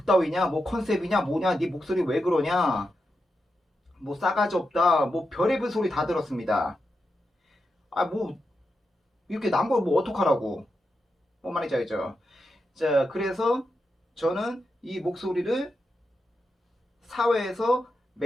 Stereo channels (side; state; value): both; normal; correlation 0.87